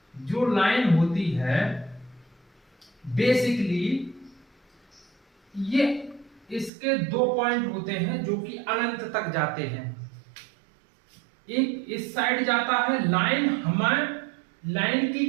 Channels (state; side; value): drops out; left; at 6.7 s